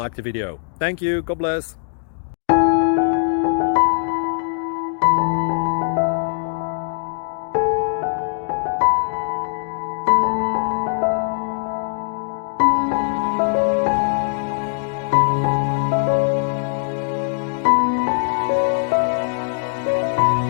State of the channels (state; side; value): silent; right; digital silence